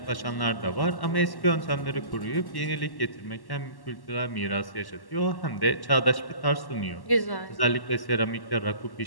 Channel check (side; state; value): right; late; 1.1 ms